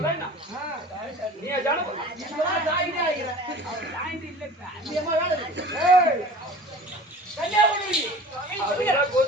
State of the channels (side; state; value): both; normal; correlation 0.42